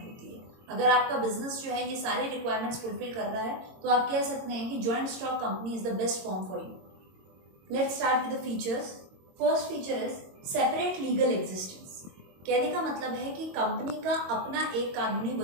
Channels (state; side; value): late; left; 22 ms